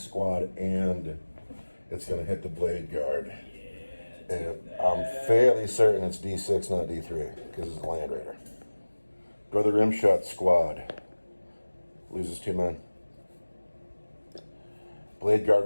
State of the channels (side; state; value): both; inverted; correlation -1.00